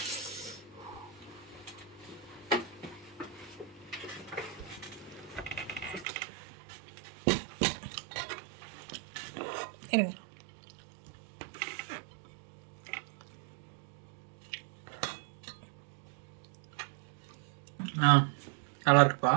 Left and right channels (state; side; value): drops out; left; at 6.1 s